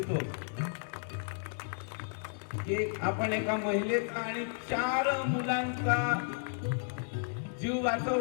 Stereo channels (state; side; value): silent; right; digital silence